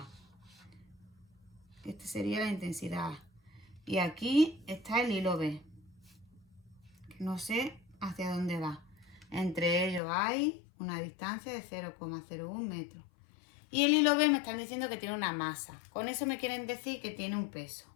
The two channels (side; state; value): right; drops out; at 10.0 s